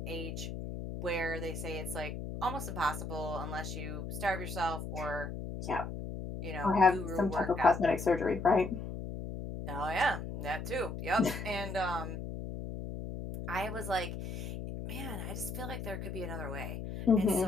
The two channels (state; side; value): noise; left; hum, 6 dB below the sound